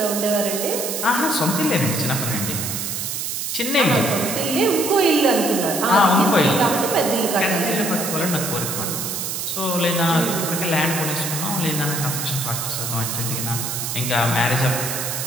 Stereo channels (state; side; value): noise; right; hiss, 3 dB below the sound